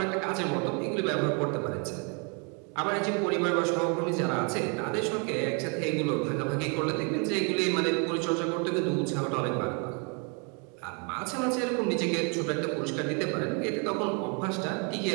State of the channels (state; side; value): quieter; left; 35.7 dB